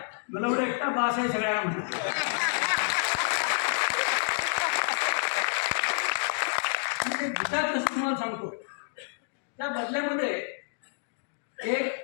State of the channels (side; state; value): right; silent; digital silence